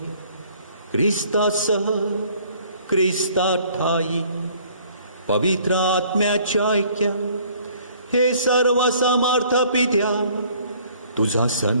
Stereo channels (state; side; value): inverted; both; correlation -0.58